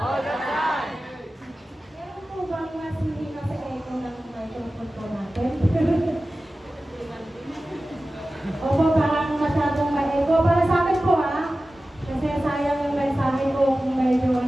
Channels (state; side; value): normal; both; correlation 0.95